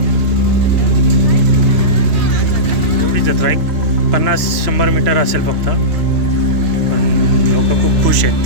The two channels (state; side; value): late; left; 3.0 ms